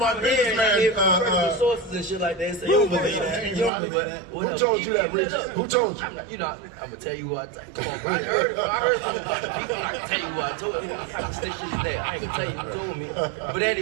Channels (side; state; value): left; drops out; at 3.7 s